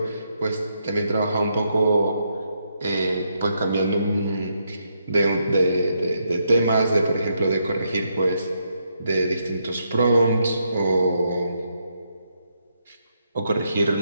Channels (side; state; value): both; inverted; correlation -0.79